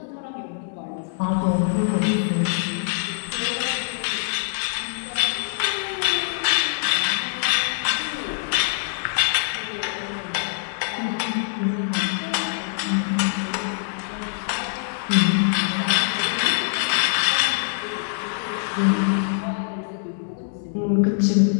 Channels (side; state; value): right; silent; digital silence